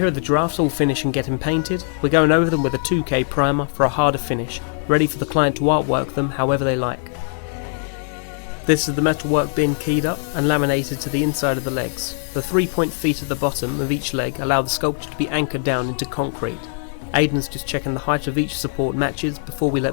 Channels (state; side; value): silent; right; 63 dB below the other